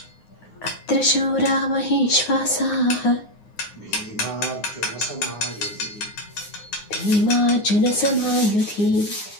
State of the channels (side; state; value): right; late; 9.6 ms